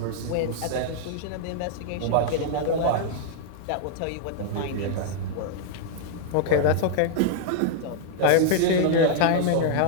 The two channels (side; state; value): both; different; correlation -0.01